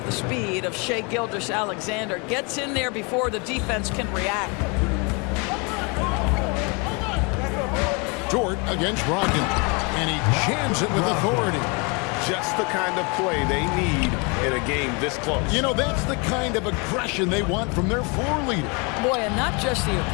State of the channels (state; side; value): quieter; right; 31.2 dB